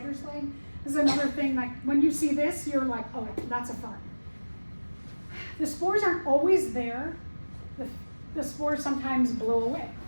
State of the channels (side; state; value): both; inverted; correlation -1.00